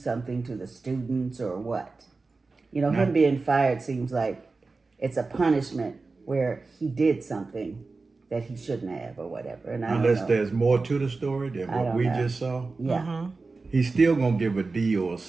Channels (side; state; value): left; quieter; 3.9 dB